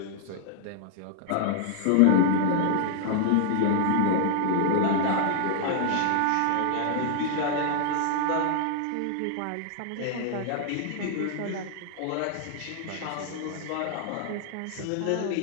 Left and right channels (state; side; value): different; both; correlation 0.00